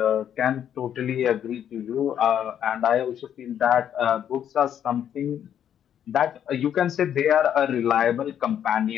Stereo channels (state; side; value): quieter; right; 9.5 dB